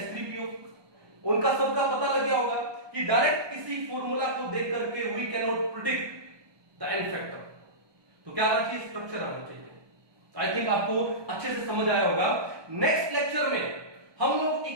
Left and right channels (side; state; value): left; late; 1.2 ms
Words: उनका सबका पता लग गया होगा कि डायरेक्ट किसी फॉर्मूला को देख करके we can not predict the n factor, तो क्या आना चाहिए स्ट्रक्चर आना चाहिए। आई थिंक आपको अच्छे से समझ आया होगा। नेक्स्ट लेक्चर में हम लोग